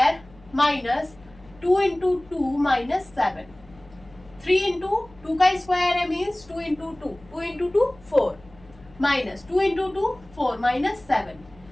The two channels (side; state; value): left; noise; hum, 25 dB below the sound